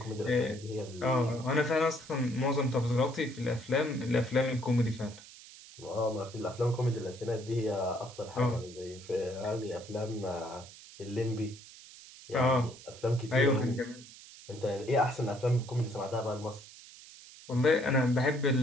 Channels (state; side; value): noise; right; hiss, 18 dB below the sound